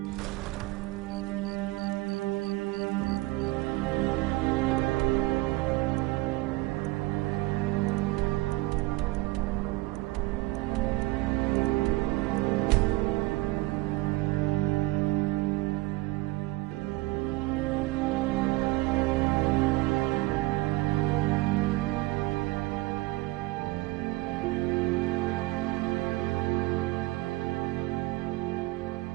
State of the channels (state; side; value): quieter; left; 20.6 dB